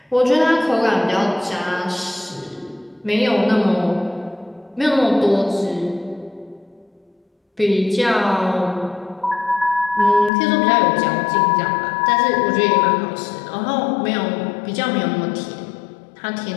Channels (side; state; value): right; drops out; at 10.3 s